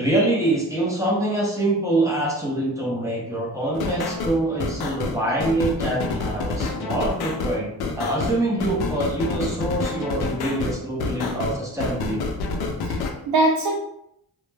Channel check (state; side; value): normal; both; correlation 0.41